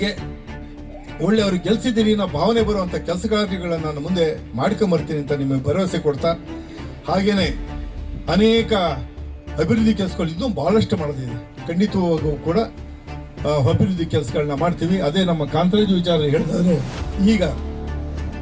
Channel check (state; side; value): identical; both; correlation 1.00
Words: ಒಳ್ಳೆಯವ್ರಿಗೆ ಗೆಲ್ಸಿದ್ದೀರಿ ಅನ್ನೋ ಭಾವನೆ ಬರುವಂಥ ಕೆಲಸ ಕಾರ್ಯಗಳನ್ನು ನಾನು ಮುಂದೆ ಮಾಡ್ಕೊಂಬರ್ತೀನಿ ಅಂತ ನಿಮಗೆ ಭರವಸೆ ಕೊಡ್ತಾ, ಹಾಗೇನೆ ಅನೇಕ ಅಭಿವೃದ್ಧಿ ಕೆಲಸಗಳು ಇನ್ನೂ ಬಹಳಷ್ಟು ಮಾಡೋದಿದೆ. ಖಂಡಿತವಾಗೂ ಕೂಡ ಅಭಿವೃದ್ಧಿ ಕೆಲಸಗಳನ್ನ ಮಾಡ್ತೀವಿ. ಅದೇ ನಮ್ಮ ಕಾಂತರಾಜು ವಿಚಾರ ಹೇಳಿದ್ರೆ, ಈಗ